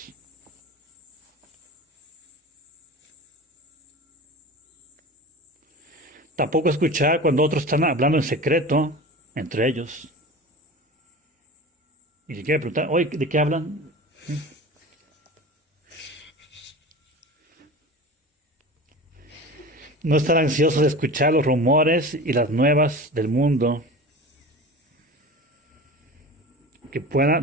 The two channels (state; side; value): normal; both; correlation 0.34